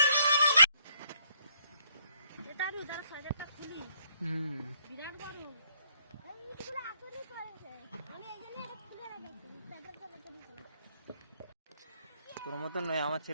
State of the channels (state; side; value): inverted; both; correlation -0.70